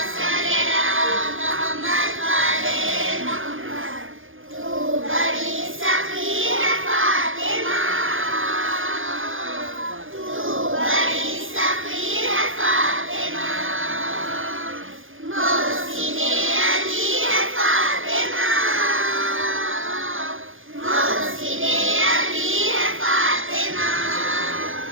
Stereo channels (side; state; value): left; late; 0.58 ms